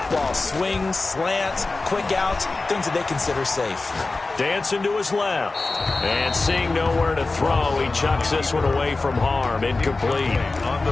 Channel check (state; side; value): quieter; right; 3.5 dB